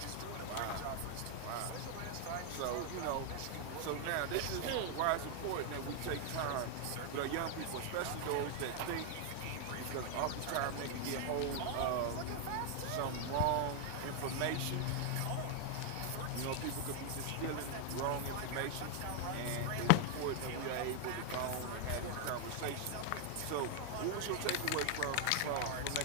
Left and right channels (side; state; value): both; different; correlation 0.00